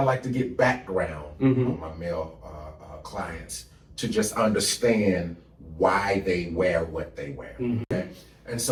like to get background on my male clients to just understand why they wear what they wear. Okay? And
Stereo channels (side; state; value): both; identical; correlation 1.00